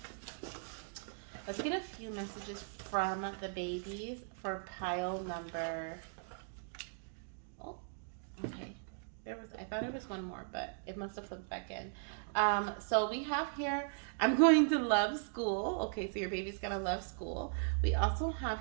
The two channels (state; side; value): silent; left; digital silence